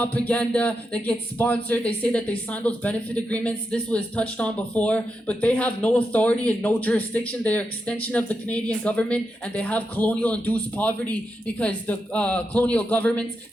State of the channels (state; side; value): normal; both; correlation 0.86